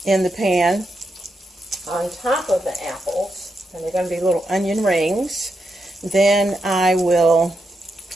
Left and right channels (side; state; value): both; normal; correlation 0.84